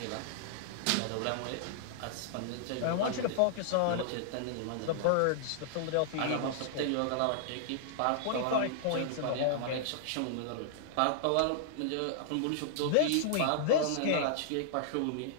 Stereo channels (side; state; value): both; different; correlation -0.01